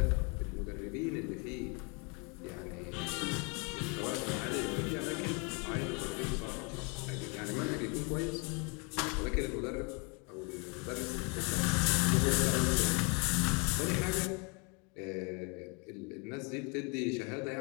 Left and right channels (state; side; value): quieter; right; 33.0 dB